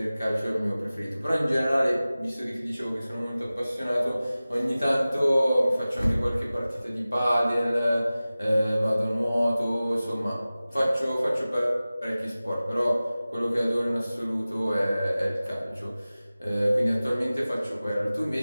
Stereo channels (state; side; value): inverted; both; correlation -0.97